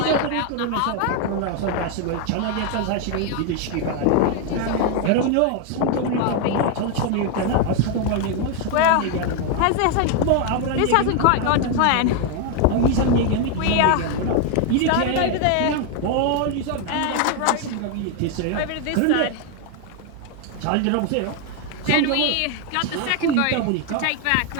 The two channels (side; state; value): both; different; correlation 0.01